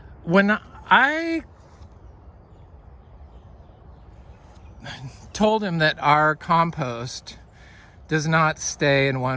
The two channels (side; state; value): both; identical; correlation 1.00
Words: when I told him that our compost does not stay in